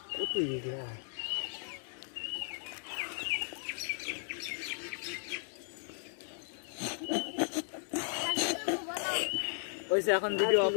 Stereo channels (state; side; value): silent; right; 54 dB below the other